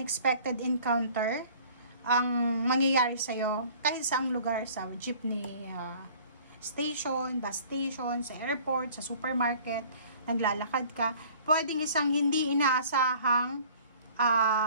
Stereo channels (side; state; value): both; inverted; correlation -0.51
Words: encounter ang mangyayari sa'yo kahit saang lugar, sa jeepney station, bus station, sa airport, sa supermarket, naglalakad ka. Pwedeng isang hindi inaasahang